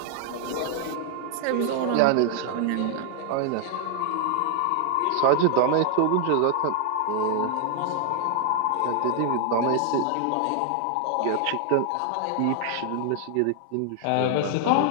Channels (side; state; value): both; different; correlation 0.00